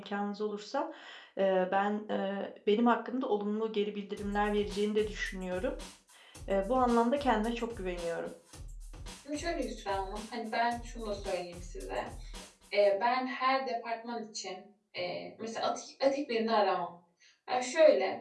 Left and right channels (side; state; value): both; identical; correlation 1.00